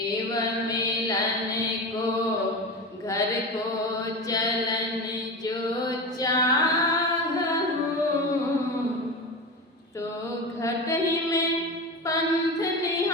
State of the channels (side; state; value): both; normal; correlation 0.25